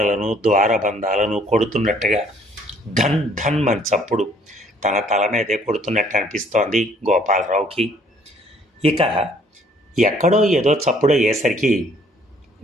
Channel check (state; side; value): normal; both; correlation 0.61